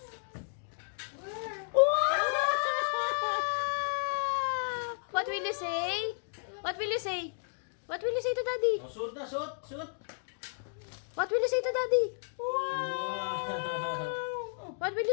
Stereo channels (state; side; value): silent; right; digital silence